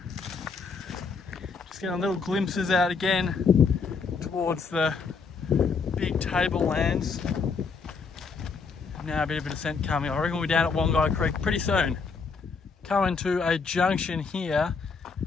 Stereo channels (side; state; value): right; quieter; 5.0 dB